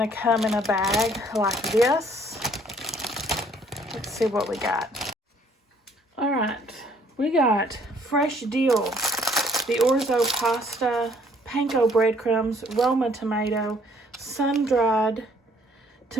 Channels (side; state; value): both; normal; correlation 0.61